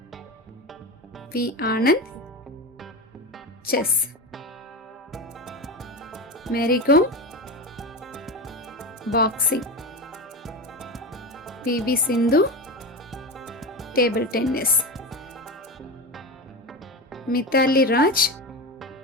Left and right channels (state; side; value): normal; both; correlation 0.22